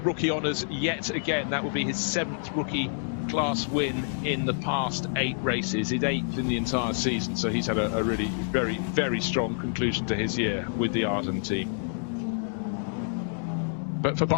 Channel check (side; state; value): right; silent; digital silence